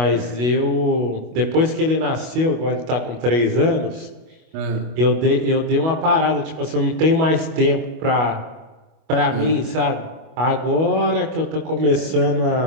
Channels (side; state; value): left; late; 25 ms